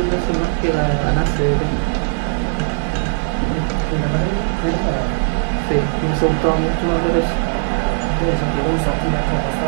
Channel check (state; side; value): silent; left; digital silence